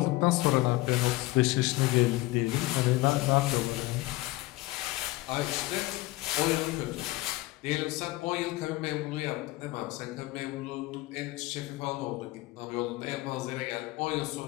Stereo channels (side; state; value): right; quieter; 19.9 dB